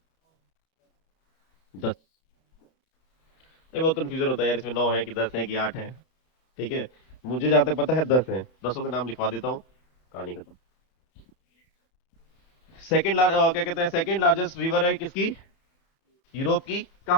10। ये बहुत कंफ्यूजन होता है यार, इसमें 9 है कि 10 है कि 8 है, ठीक है। मुझे जहां तक पता है 10 है, 10 के नाम लिखवा देता हूँ, कहानी खत्म। क्या कहते हैं, सेकंड लार्जेस्ट रिवर है किसकी? यूरोप की।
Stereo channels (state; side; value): late; right; 31 ms